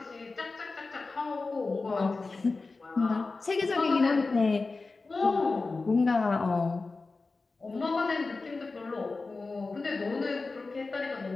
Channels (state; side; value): quieter; right; 3.8 dB